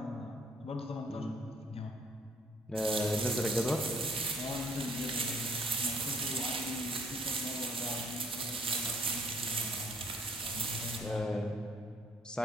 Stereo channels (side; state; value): both; normal; correlation 0.62